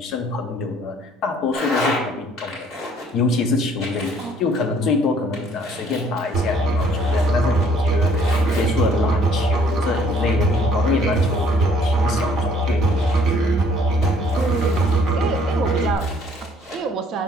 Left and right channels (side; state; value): both; normal; correlation 0.60